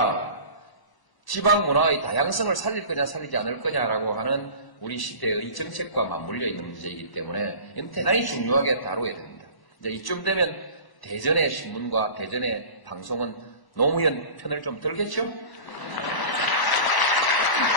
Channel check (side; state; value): right; late; 1.0 ms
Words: 지방 문화의 다양성을 살릴 거냐 살리지 않을 거냐라고 하는 우리 시대의 정책과 맞물려 있는 문제이기 때문에 이건 대단히 중요하게 다뤄야 됩니다. 이제 이쯤 되면 대전의 신문과 대전의 방송은 노무현 편을 좀 들겠죠?